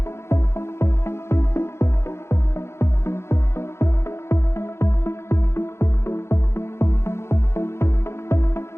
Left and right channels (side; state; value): right; late; 0.13 ms